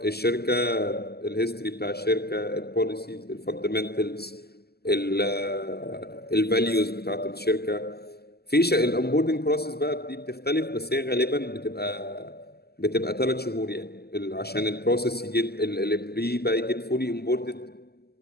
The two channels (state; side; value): late; right; 0.46 ms